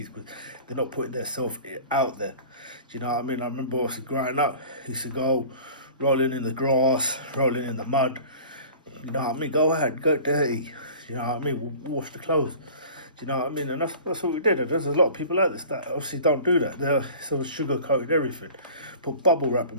because they're not putting themselves out there. Do you know what I mean? I remember obviously growing up, I used to go rolling in the grass, rolling in the mud. You know what I mean? Go ahead, go dirty. You know what I mean? Wash the clothes. Do you know what I mean? And that's what we did. And there's a lot of people like this that obviously don't do that. They're sort of sugar-coated everything. Put bubble wrap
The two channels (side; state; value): both; inverted; correlation -0.43